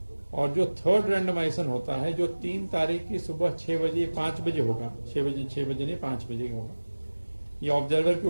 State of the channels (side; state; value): both; inverted; correlation -1.00